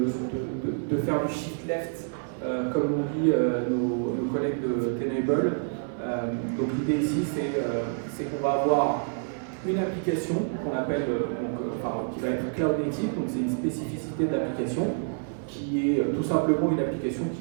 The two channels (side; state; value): left; silent; digital silence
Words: faire du shift left, comme nous dit nos collègues de Tenable. Donc l'idée ici, c'est qu'on va avoir une application qu'on appelle, qui va être cloud native, donc c'est une spécificité de l'application, qui est tout simplement une application